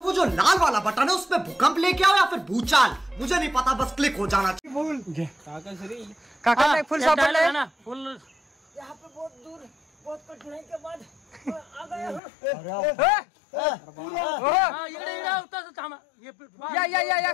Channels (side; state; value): right; drops out; at 12.2 s